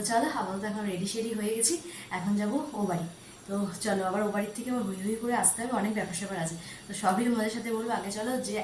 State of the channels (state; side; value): identical; both; correlation 1.00